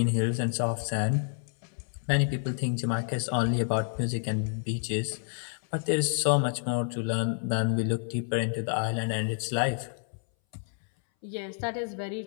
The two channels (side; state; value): right; silent; 58 dB below the other